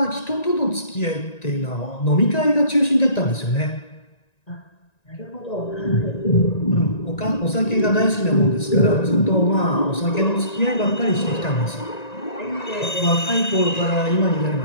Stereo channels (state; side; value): late; right; 1.9 ms